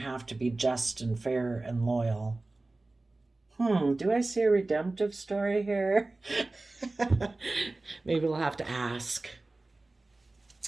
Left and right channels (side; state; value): left; quieter; 3.1 dB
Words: to be just and fair and loyal. Do I see a redemptive story here? Maybe we'll have to ask.